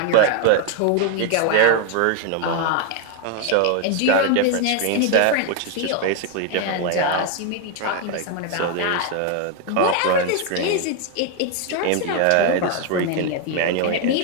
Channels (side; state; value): both; different; correlation 0.01